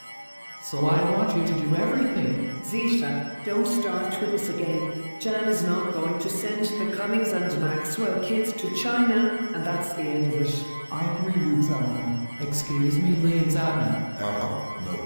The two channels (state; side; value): inverted; both; correlation -1.00